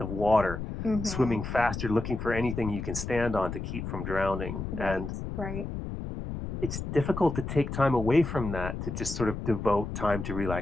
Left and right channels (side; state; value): left; noise; rumble, 6 dB below the sound